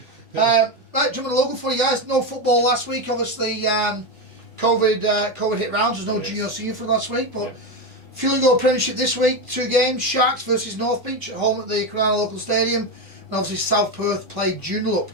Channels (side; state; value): both; normal; correlation 0.13